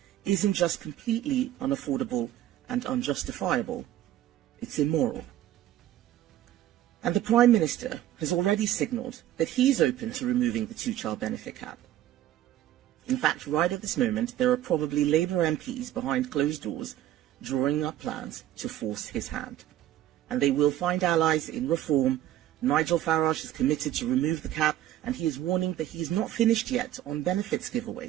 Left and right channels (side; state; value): left; quieter; 12.7 dB